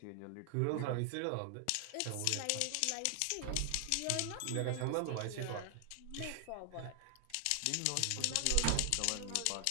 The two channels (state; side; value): different; both; correlation 0.00